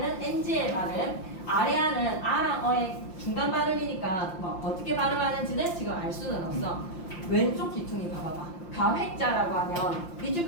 NG의 발음, 아래아는 아랑 어의 중간 발음이니까 뭐 어떻게 발음하는지는 지금 알 수는 없어. 왼쪽 귀퉁이 봐봐봐. 가획자라고 하면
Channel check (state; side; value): late; right; 5.8 ms